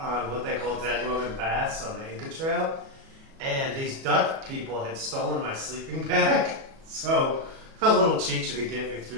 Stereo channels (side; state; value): left; late; 37 ms